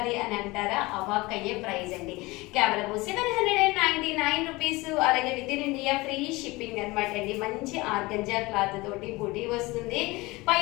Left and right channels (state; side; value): quieter; right; 22.1 dB